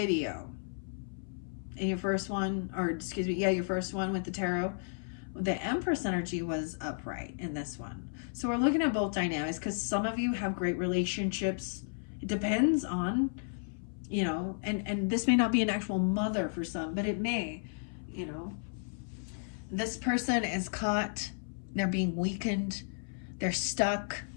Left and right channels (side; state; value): right; silent; 56 dB below the other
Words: in your first one, your first one with the tarot, the Empress energy was upright in this one. So we're looking at both dynamics, because some of you have great relationships. It depends on, and this may not be an actual mother for some, but it may, This person is caught, they're being weakened, they're stuck.